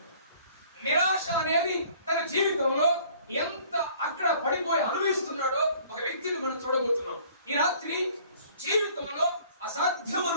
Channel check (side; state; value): both; inverted; correlation -0.54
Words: నిరాశ అనేది తన జీవితంలో ఎంత అక్కడ పడిపోయి అనుభవిస్తున్నాడో ఒక వ్యక్తిని మనం చూడబోతున్నాం. ఈ రాత్రి జీవితంలో అసాధ్యం